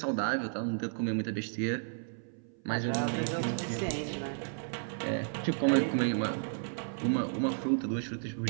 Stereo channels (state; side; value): silent; left; 56 dB below the other